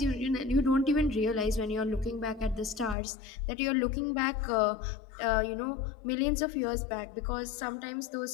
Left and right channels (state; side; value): drops out; right; at 3.0 s